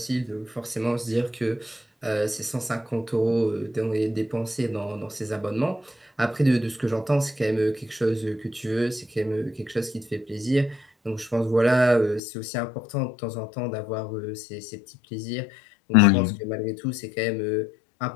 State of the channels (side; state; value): right; drops out; at 12.2 s